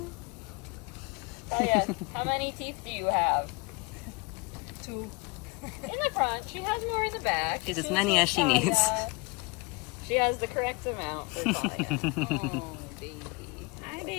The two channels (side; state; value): right; quieter; 27.2 dB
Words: Talia, how many teeth do you have? 2. In the front. She has more in the back. She's as many as she needs. She has the correct amount for Talia. Oh, baby. Hi,